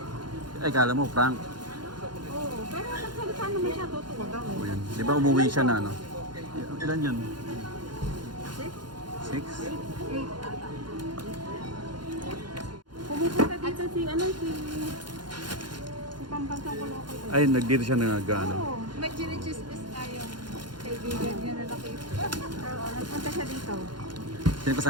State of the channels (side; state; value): left; late; 0.71 ms